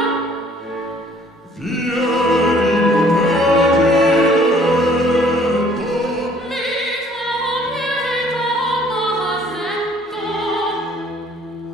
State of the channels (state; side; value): normal; both; correlation 0.58